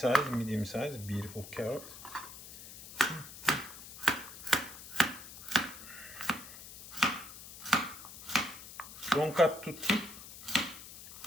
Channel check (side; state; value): left; noise; hiss, 14 dB below the sound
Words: medium size, beautiful carrot. Don't cut too thick,